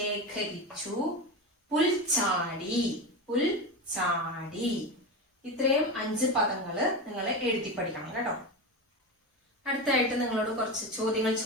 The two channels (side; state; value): both; normal; correlation 0.20